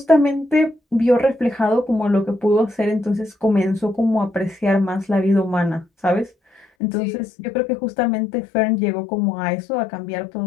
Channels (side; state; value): right; drops out; at 6.7 s